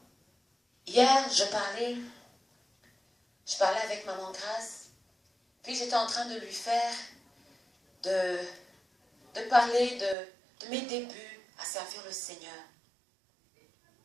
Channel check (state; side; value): drops out; left; at 10.2 s